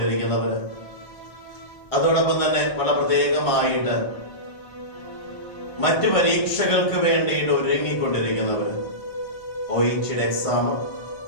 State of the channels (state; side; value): late; right; 1.5 ms